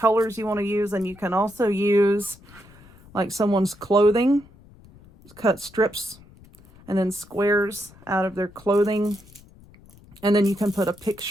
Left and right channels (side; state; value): left; noise; rumble, 24 dB below the sound